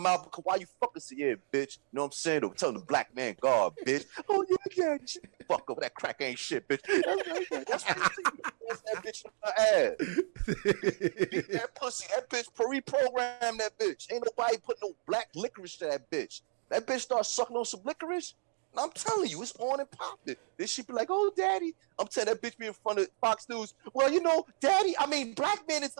because why you fucking say, yeah, bitch. You know what I'm saying? Or telling the black man, God, bitch. Oh, yeah, fuck up. That crack ain't shit, bitch. That's what you see. That bitch in her ass. Beat that pussy. That bitch reprogram that bitch. Ain't nobody putting no black licorice to that bitch. That bitch start sucking on some licorice. And I'm telling you, it's on and popping. Then she be like, oh, daddy. I'm telling that bitch be in front of Fox News. Well, you know, black man is the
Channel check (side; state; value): left; silent; digital silence